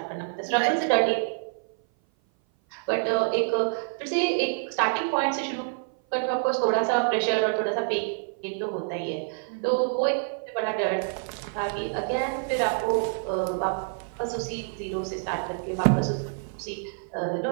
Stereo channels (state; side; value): silent; left; 57 dB below the other